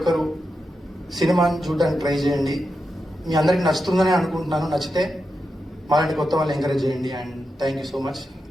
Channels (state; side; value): normal; both; correlation 0.88